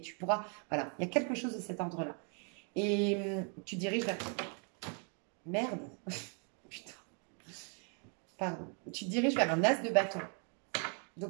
Tu pourras. Voilà, il y a quelque chose de cet ordre-là. Et tu diriges vers. Merde. Putain. Pardon. Tu te diriges vers un as de bâton.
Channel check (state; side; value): quieter; left; 39.7 dB